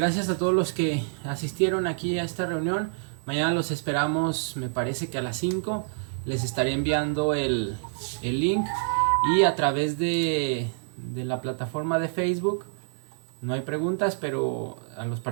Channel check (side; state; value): left; silent; 60 dB below the other